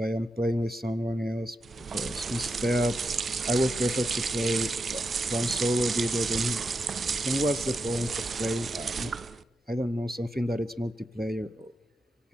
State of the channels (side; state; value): both; normal; correlation 0.87